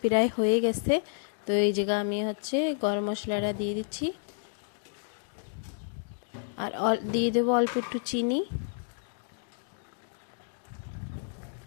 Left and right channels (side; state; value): right; silent; digital silence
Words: প্রায় হয়ে গেছে। তো এই জায়গা আমি হচ্ছে গরম মশলাটা দিয়ে দিচ্ছি, আর দিয়ে দেবো অল্প একটু চিনি।